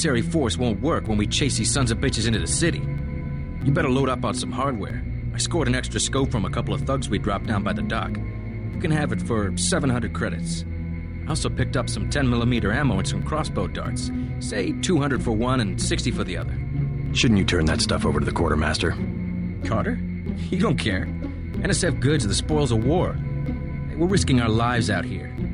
force won't work when we chase these sons of bitches into the city. You better load up on some hardware. I scored an extra scope from a couple of thugs we dropped down by the dock. You can have it for 700 credits. I also picked up some 10mm ammo and some crossbow darts. Say 200 for one and 60 for the other. Shouldn't you turn that stuff over to the quartermaster? Carter? You don't care. NSF goods are the spoils of war. Hey, we're risking our lives out here.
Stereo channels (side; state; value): both; identical; correlation 1.00